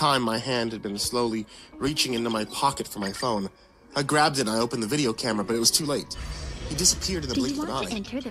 my hand had been slowly reaching into my pocket for my phone. I grabbed it and I opened the video camera, but it was too late. He disappeared in the blink of an eye. enter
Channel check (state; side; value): identical; both; correlation 1.00